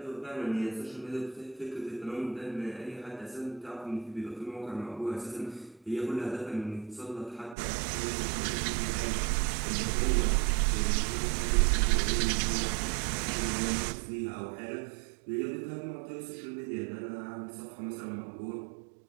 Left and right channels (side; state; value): left; drops out; at 7.6 s